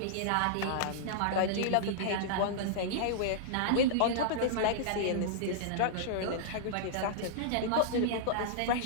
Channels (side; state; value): both; different; correlation -0.02